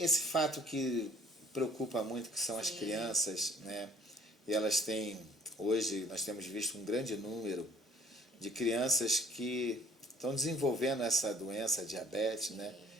fato que preocupa muito, que são as Sim. crianças, né? E elas têm, hoje nós temos visto um grande número de crianças que estão desenvolvendo essa doença, diabetes, né?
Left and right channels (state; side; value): normal; both; correlation 0.56